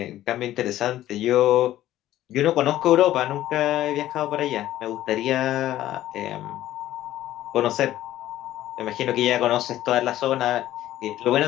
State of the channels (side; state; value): right; quieter; 13.8 dB